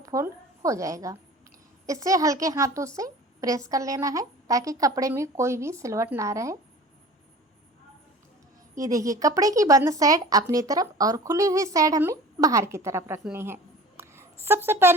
हो जाएगा। इसे हल्के हाथों से प्रेस कर लेना है ताकि कपड़े में कोई भी सिलवट ना रहे। ये देखिए कपड़े की बंद साइड अपनी तरफ और खुली हुई साइड हमें बाहर की तरफ रखनी है। सबसे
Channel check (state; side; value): normal; both; correlation 0.41